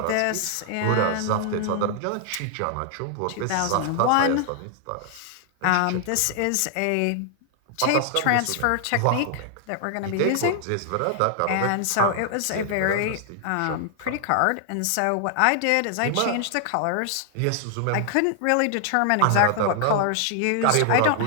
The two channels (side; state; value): both; different; correlation 0.00